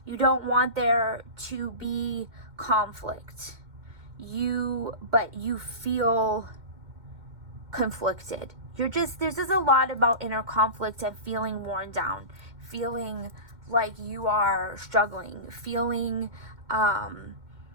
You don't want there to be conflict. But you feel conflicted. There's just a lot about inner conflict and feeling worn down, feeling like you are struggling, feeling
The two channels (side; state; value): left; late; 2.1 ms